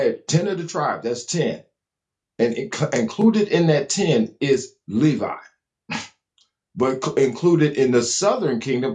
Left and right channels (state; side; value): identical; both; correlation 1.00